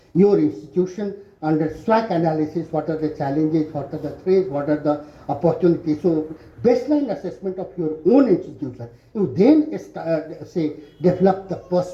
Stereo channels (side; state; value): both; identical; correlation 1.00